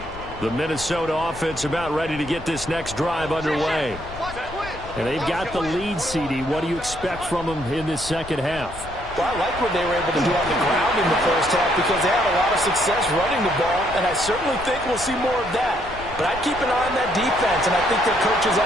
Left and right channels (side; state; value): left; noise; rumble, 14 dB below the sound